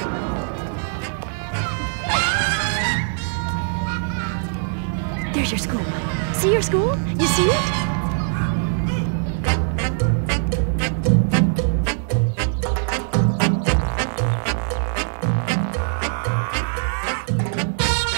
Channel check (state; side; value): silent; left; digital silence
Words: There's your school. See your school? You see it?